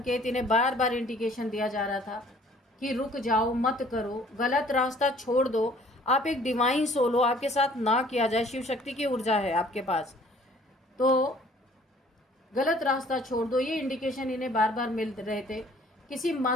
इन्हें बार बार इंडिकेशन दिया जा रहा था कि रुक जाओ, मत करो, गलत रास्ता छोड़ दो, आप एक डिवाइन सोल हो, आपके साथ ना किया जाए, शिव शक्ति की ऊर्जा है आपके पास, तो गलत रास्ता छोड़ दो, ये इंडिकेशन इन्हें बार बार मिल रहे थे। किसी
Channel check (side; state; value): both; normal; correlation 0.56